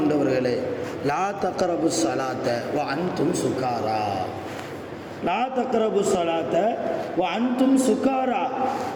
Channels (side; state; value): both; identical; correlation 1.00